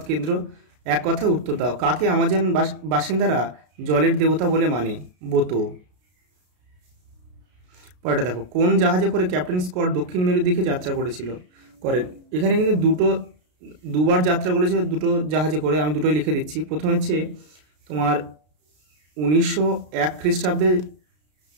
কেন্দ্র, এক কথায় উত্তর দাও। কাকে আমাজন বাসিন্দারা জলের দেবতা বলে মানে? বোতো। পরেরটা দেখো, কোন জাহাজে করে ক্যাপ্টেন স্কট দক্ষিণ মেরুর দিকে যাত্রা করেন? এখানে কিন্তু দুবার যাত্রা করেছে, দুটো জাহাজে করে। আমি দুটোই লিখে দিচ্ছি। প্রথম হচ্ছে তোমার 1901 খ্রিস্টাব্দে,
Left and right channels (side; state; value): left; late; 33 ms